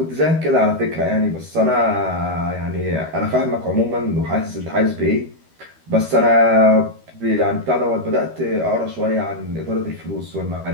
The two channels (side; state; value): left; late; 13 ms